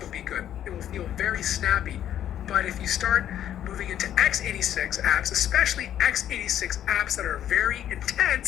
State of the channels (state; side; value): quieter; right; 10.8 dB